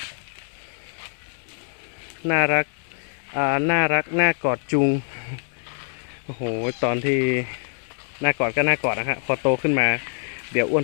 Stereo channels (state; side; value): silent; right; digital silence